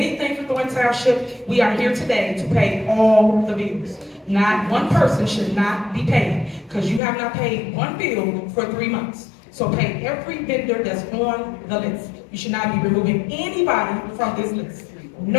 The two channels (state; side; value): drops out; right; at 7.0 s